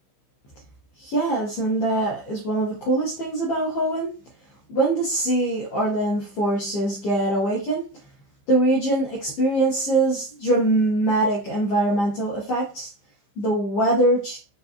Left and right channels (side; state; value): right; late; 15 ms